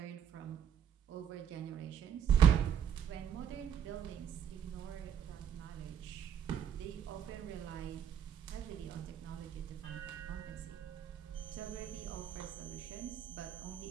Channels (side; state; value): left; quieter; 8.9 dB